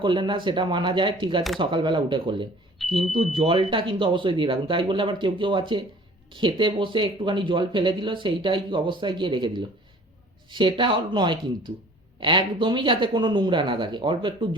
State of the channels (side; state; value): both; normal; correlation 0.50